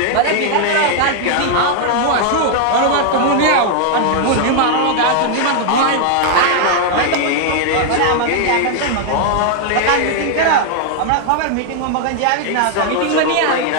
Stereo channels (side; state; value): both; different; correlation 0.00